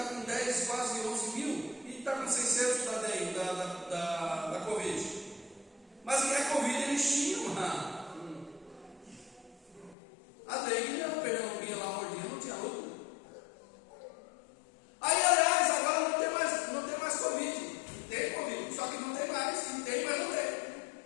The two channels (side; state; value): right; drops out; at 10.0 s